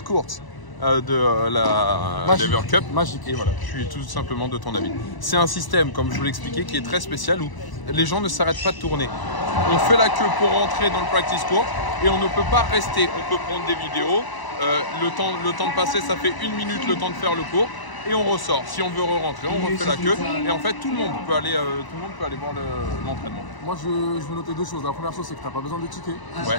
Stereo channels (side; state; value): right; late; 1.0 ms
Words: de la Lever Cup. Magique. Et voilà, je suis tout simplement de ton avis. C'est un système, comme je vous l'expliquais, qui est très spécial où les gens ne s'arrêtent pas de tourner. On fait la queue pour rentrer dans le practice court et on ne peut pas rester. On peut prendre des vidéos. Le temps de passer, ça fait 1 minute le temps de faire le cours. Et on ressort. Si on veut re-rentrer, on refait la queue. Et en fait, tout le monde peut aller voir l'entraînement. Moi, je veux noter 2 choses. La première chose, c'est que tu n'as pas besoin de ticket.